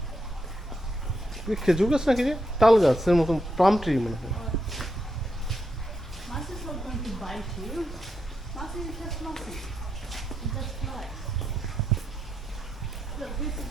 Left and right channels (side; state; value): both; normal; correlation 0.82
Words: খেজুর গাছ নাকি রে তাল গাছের মতন palm tree মনে হয় Massey's not going to bite you. Massey is just massive. It's just flies. Look, this